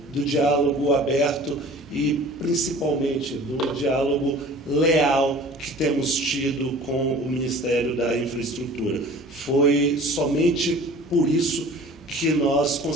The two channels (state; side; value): normal; both; correlation 0.44